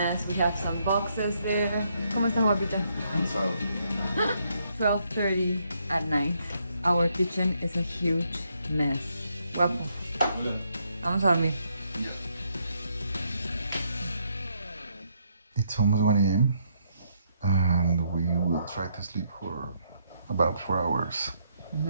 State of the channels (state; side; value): inverted; both; correlation -0.75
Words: We have some boxes there. ¿Cómo está, guapita? And so 12:30 at night. Our kitchen is a huge mess. Guapo. Vamos a dormir. it's almost 1 a.m. and we will try to sleep for about 4 hours.